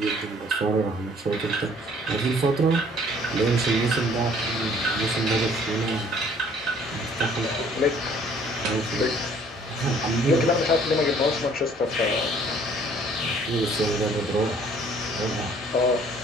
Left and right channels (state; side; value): normal; both; correlation 0.58